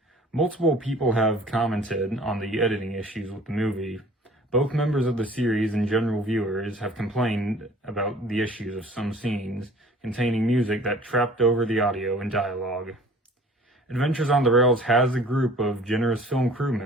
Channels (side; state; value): both; normal; correlation 0.49